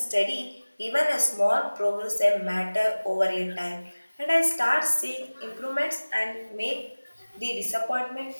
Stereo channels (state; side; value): inverted; both; correlation -1.00